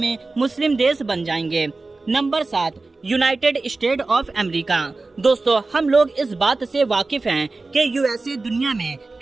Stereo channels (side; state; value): left; quieter; 3.5 dB